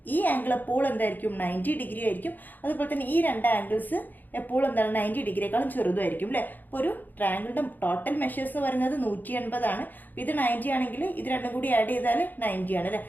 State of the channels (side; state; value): right; late; 0.086 ms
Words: ഈ ആംഗിൾ എപ്പോൾ എന്തായിരിക്കും? 90 ഡിഗ്രി ആയിരിക്കും. അതുപോലെ തന്നെ ഈ 2 ആംഗിൾസ് എപ്പോഴും എന്താണ്? 90 ഡിഗ്രിയേക്കാളും ചെറുതായിരിക്കും അല്ലേ? അപ്പോൾ ഒരു ട്രയാങ്കിളിൻ്റെ ടോട്ടൽ മെഷേഴ്സ് എന്ന് പറയുന്നത് 180 ആണ്. അപ്പോൾ ഇത് 90 ആണെങ്കിൽ ഇത് രണ്ടും കൂടി ആഡ് ചെയ്താൽ 90 ആണ് അല്ലേ?